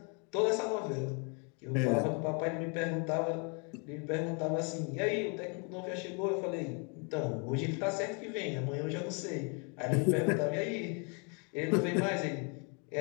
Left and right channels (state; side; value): quieter; right; 36.4 dB